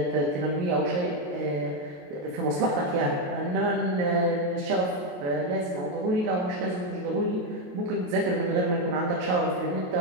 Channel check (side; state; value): left; late; 28 ms